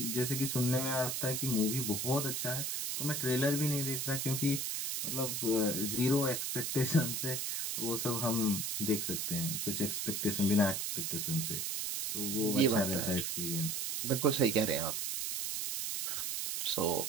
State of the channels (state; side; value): noise; right; hiss, 1 dB below the sound